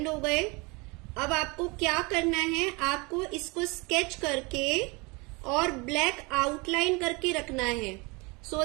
हो गए। अब आपको क्या करना है, आपको इसको स्केच करके और ब्लैक आउटलाइन करके रखना है, सो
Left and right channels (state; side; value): quieter; left; 27.5 dB